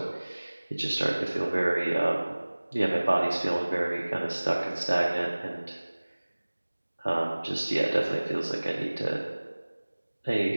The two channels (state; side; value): inverted; both; correlation -1.00